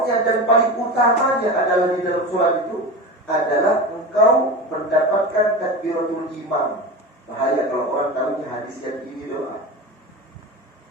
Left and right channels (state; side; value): normal; both; correlation 0.27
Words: dan paling utamanya adalah di dalam sholat itu adalah engkau mendapatkan takbiratul imam. Bahaya kalau orang tahunya hadis yang ini doa.